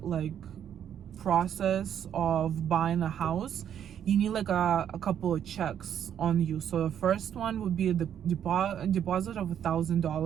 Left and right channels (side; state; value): left; quieter; 9.4 dB